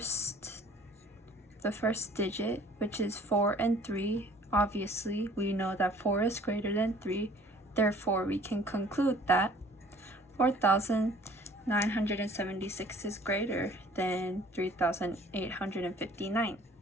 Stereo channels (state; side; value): normal; both; correlation 0.53